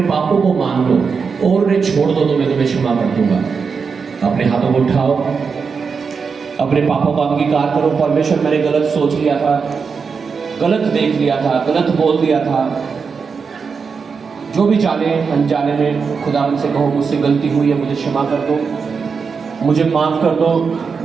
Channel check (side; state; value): left; quieter; 5.5 dB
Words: पापों को मान लो और उन्हें छोड़ दो तो मैं तुम्हें क्षमा कर दूंगा। अपने हाथों को उठाओ, अपने पापों का अंगीकार करो। परमेश्वर, मैंने गलत सोच लिया था, गलत देख लिया था, गलत बोल दिया था, जो भी जाने अनजाने में खुदावन से कहो मुझसे गलती हुई है, मुझे क्षमा कर दो, मुझे माफ कर दो,